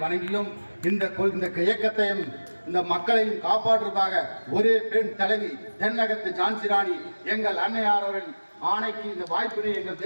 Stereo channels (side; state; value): both; inverted; correlation -1.00